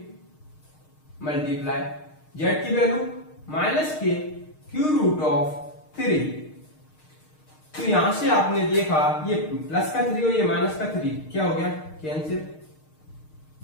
मल्टीप्लाई z की वैल्यू -k q√3। तो यहां से आपने देखा ये प्लस का 3 और ये माइनस का 3 क्या हो गया, कैंसिल,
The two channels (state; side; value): late; right; 6.5 ms